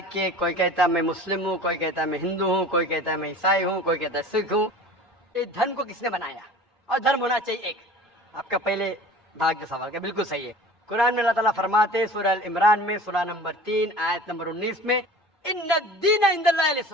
कोई कहता है मैं मुस्लिम हूँ, कोई कहता है मैं हिंदू हूँ, कोई कहता है मैं ईसाई हूँ, कोई कहता है सिख हूँ। इस धर्म को किसने बनाया, और धर्म होना चाहिए एक। आपका पहले भाग के सवाल का बिल्कुल सही है। कुरान में अल्लाह ताला फरमाते सूरह अल इमरान में सूरह नंबर 3 आयत नंबर 19 में, इन्नद-दीन इंदल्लाहिल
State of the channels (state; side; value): normal; both; correlation 0.41